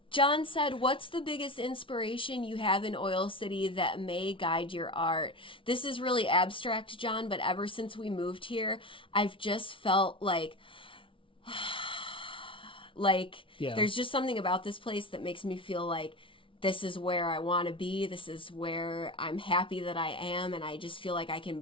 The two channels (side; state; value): right; late; 0.25 ms